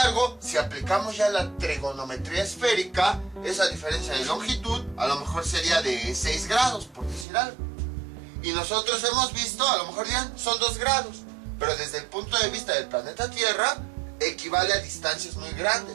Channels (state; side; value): drops out; left; at 7.2 s